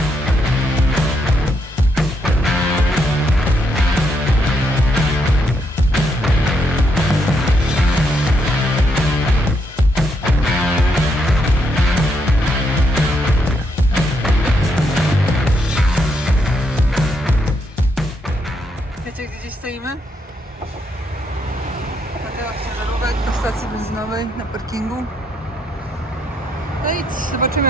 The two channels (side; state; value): both; normal; correlation 0.77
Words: Wiecie, gdzie stoimy? Ciężarówek do stacji benzynowej na parkingu. No i zobaczymy,